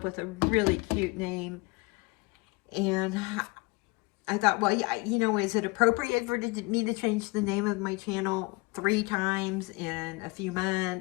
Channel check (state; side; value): quieter; right; 26.4 dB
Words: with a really cute name, and I thought, well, yeah, you know, is it appropriate for me to change the name of my channel 3 times in a few